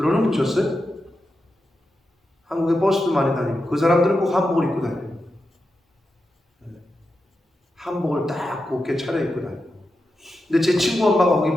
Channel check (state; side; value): normal; both; correlation 0.89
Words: 보셨어요? 한국에 버스도 많이 다니고 그 사람들은 꼭 한복을 입고 다녀요. 한복을 딱 곱게 차려입고 다녀요. 근데 제 친구 엄마가 거기